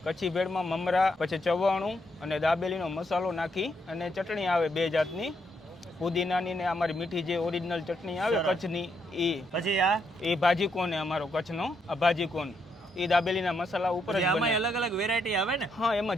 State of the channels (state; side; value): normal; both; correlation 0.77